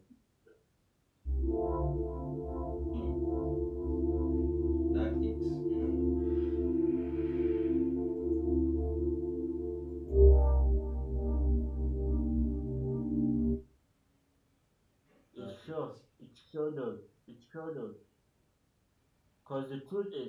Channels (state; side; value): identical; both; correlation 1.00